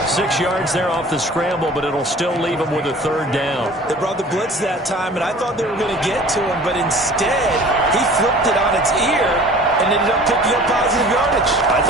6 yards there off the scramble, but it'll still leave him with a 3rd down. They brought the blitz that time, and I thought they were going to get to him, but instead, he flipped it on its ear and ended up picking up positive yardage. I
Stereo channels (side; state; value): both; normal; correlation 0.46